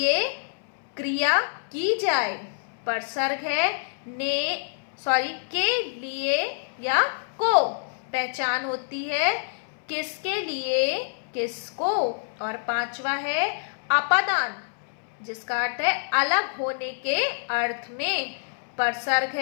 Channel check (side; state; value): right; silent; 60 dB below the other